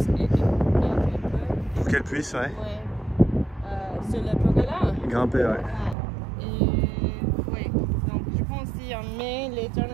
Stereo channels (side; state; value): left; drops out; at 6.0 s